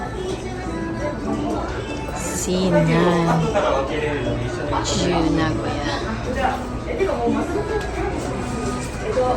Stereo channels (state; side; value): identical; both; correlation 1.00